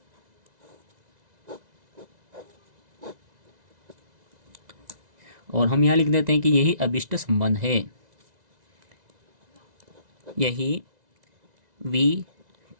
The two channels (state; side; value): late; left; 2.0 ms